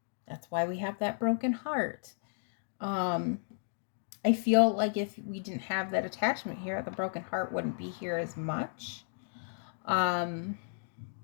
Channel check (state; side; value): silent; right; digital silence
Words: that's why we have that broken heart. I feel like if we didn't have that attachment here, the broken heart wouldn't be here as much.